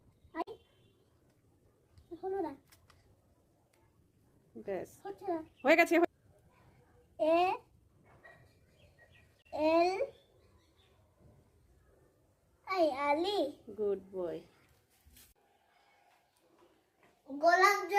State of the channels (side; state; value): both; identical; correlation 1.00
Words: আই হলো না, ব্যাস হচ্ছে না। হয়ে গেছে। A L I Ali good boy. গোলাপ